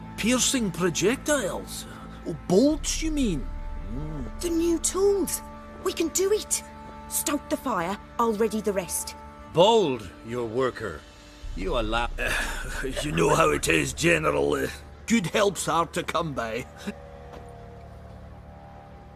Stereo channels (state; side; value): identical; both; correlation 1.00